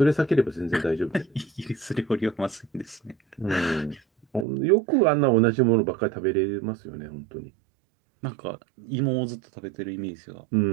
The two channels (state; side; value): drops out; left; at 4.5 s